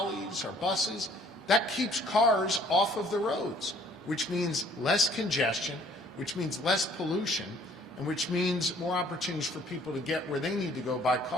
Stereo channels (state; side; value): normal; both; correlation 0.58